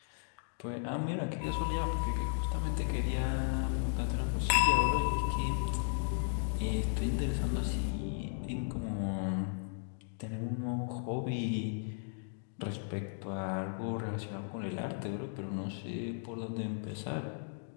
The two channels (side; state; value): right; silent; digital silence